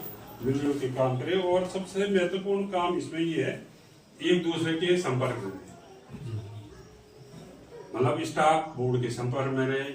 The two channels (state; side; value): identical; both; correlation 1.00